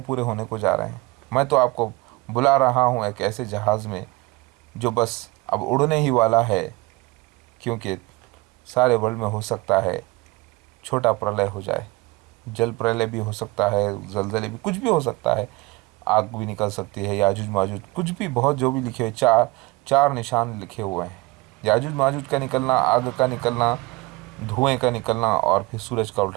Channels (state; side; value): quieter; left; 23.1 dB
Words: पूरे होने को जा रहे हैं। मैं तो आपको बुला रहा हूँ एक ऐसे जहाज़ में जो बस अब उड़ने ही वाला है, क्योंकि सारे वर्ल्ड में हो सकता है छोटा प्रलय हो जाए, जल प्रलय भी हो सकता है, जलजले भी, कुछ भी हो सकता है, आग भी निकल सकती है, याजुज माजुज, कुछ भी, बहुत जो भी लिखे हुए, चार निशान लिखे हुए हैं। याजुज माजुज का निकलना, आग का निकलना, धुएं का निकलना, और फिर सूरज का